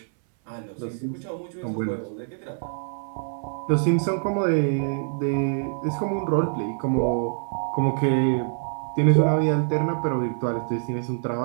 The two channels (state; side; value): silent; left; 62 dB below the other